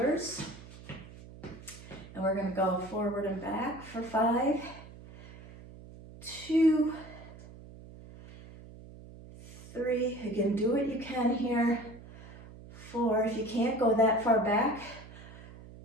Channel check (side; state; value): right; noise; hum, 17 dB below the sound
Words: And we're going to go forward and back for 5, 2, 3. Again, do what you can here. 4. If you can't go that far back,